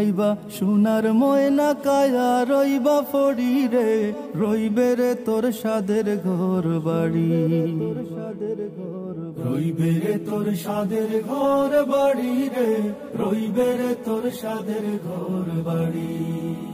সোনার ময়না কায়া রইবা ফড়ি রে, রইবে রে তোর সাদের ঘর বাড়ি, রইবে রে তোর সাদের ঘর বাড়ি রে, রইবে রে তোর সাদের ঘর বাড়ি।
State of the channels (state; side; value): identical; both; correlation 1.00